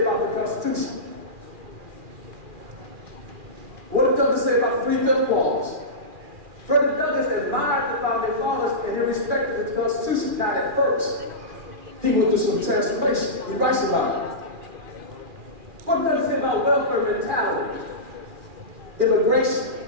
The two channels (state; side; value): late; left; 2.4 ms